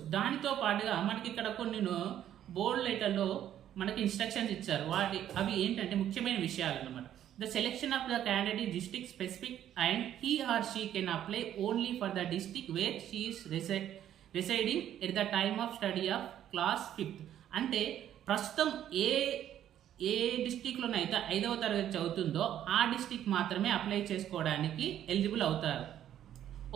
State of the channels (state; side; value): quieter; left; 11.0 dB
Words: దానితో పాటుగా మనకి ఇక్కడ కొన్ని బోల్డ్ లెటర్లో మనకి ఇన్స్ట్రక్షన్స్ ఇచ్చారు. అవి ఏంటంటే ముఖ్యమైన విషయాలు అన్నమాట. The selection of the candidate is district specific and he or she can apply only for the district where she is residing at the time of study of class 5th. అంటే ప్రస్తుతం ఏ డిస్ట్రిక్ట్లోనైతే 5వ తరగతి చదువుతుందో ఆ డిస్ట్రిక్ట్ మాత్రమే apply చేసుకోవడానికి eligible అవుతారు.